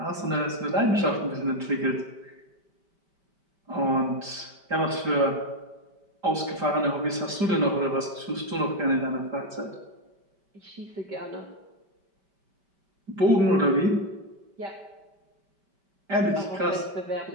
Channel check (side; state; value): left; late; 5.1 ms